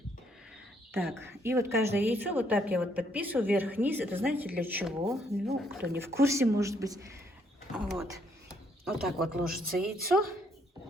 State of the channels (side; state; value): both; normal; correlation 0.70